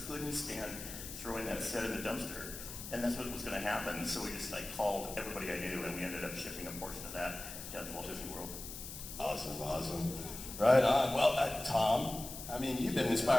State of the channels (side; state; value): left; noise; hiss, 10 dB below the sound